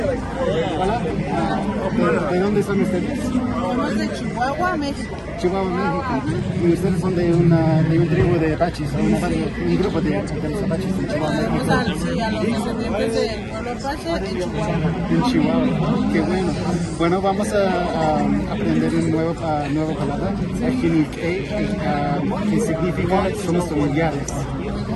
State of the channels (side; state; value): both; identical; correlation 1.00